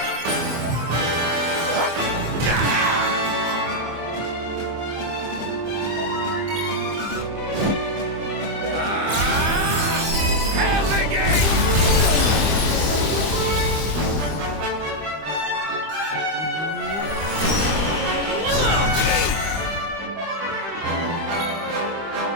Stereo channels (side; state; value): left; late; 25 ms